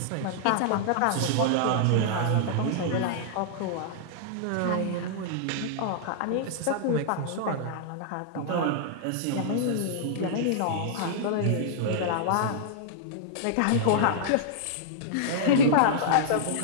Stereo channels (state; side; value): different; both; correlation -0.02